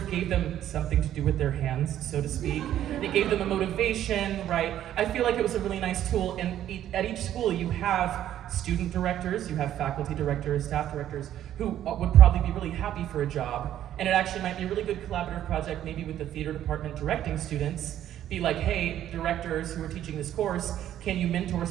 gave them something to do with their hands, so to speak. It gave them a motivation, right? I feel like it was a really nice tool, and at each school you have student directors, you have faculty directors, staff directors, who would probably be really happy for a job, and it actually might be a really good collaborative project, maybe with the theater department directing students. Be like, hey, directors who are teaching this course, can you mentor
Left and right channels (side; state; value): left; quieter; 11.6 dB